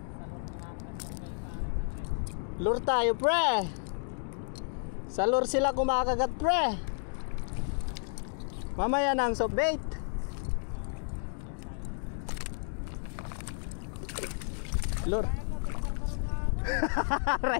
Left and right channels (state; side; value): silent; right; 57 dB below the other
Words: Lure tayo, pre. Sa lure sila kumakagat, pre. Mamaya na ang soft bait. Lure.